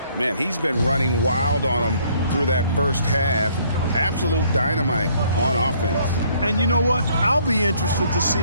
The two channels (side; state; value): both; inverted; correlation -0.63